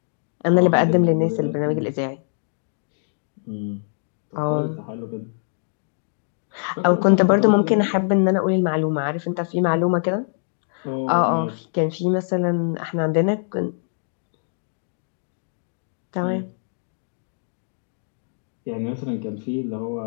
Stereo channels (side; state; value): right; silent; digital silence